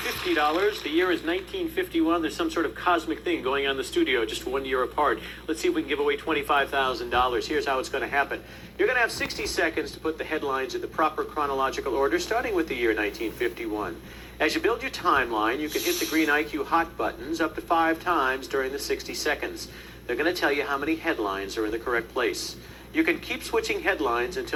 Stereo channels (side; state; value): both; identical; correlation 1.00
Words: The year is 1951. There's some sort of cosmic thing going on in the studio just 1 year apart. Let's see if we can give away $25,000. Here's how it's going to happen. You're going to have 60 seconds to put the headlines in the proper chronological order, starting with the year 1951. As you build your timeline, you can hit the green IQ hot buttons up to 5 times during the 60 seconds. They're going to tell you how many headlines are in the correct place. You can keep switching headlines